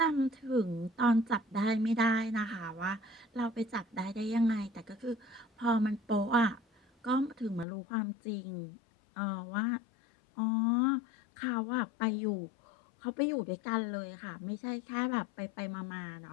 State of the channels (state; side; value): drops out; right; at 7.7 s